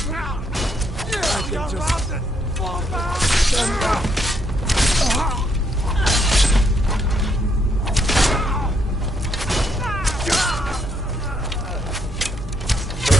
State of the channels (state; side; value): normal; both; correlation 0.73